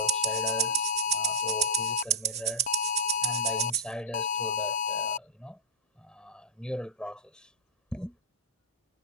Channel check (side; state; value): both; normal; correlation -0.15